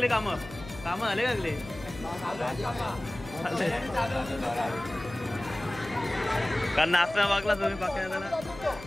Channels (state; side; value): noise; left; hum, 15 dB below the sound